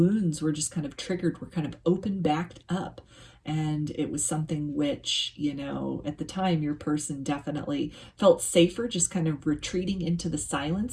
were just kind of triggered, were kind of opened back up. And it was something which, you know, at the time, your person definitely felt safer just kind of retreating into the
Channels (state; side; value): identical; both; correlation 1.00